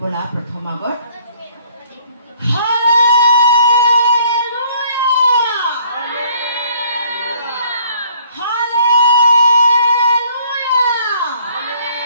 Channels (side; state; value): both; inverted; correlation -0.60